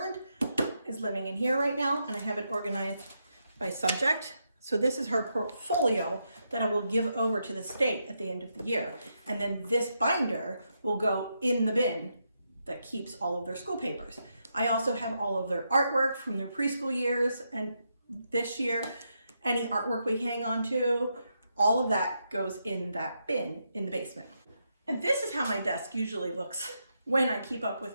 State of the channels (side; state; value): both; inverted; correlation -0.82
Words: is living in here right now, and I have it organized by subject. So this is her portfolio that I will give over to the state at the end of the year. And then this binder will go in the bin that keeps all of their school papers. I also have all of their artwork from their preschool years, and this year, any artwork we hang on to, all of that goes in that bin in the basement. And this is how my desk usually looks when I keep up